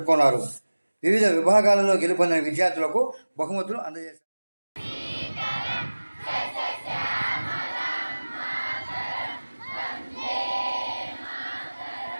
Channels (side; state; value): both; inverted; correlation -1.00